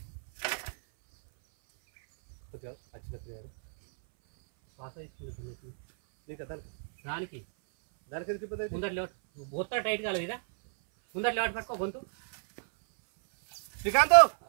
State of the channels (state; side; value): silent; left; 58 dB below the other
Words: శ్వాస తీసుకుంటుంది నీకు దానికి దానికి ఎందుకు ఇబ్బంది? ముందర లేవట్ మొత్తం టైట్ కాలేదు ఇదా. ముందర లేవట్ పట్టుకో గొంతు. శ్రీకాంత్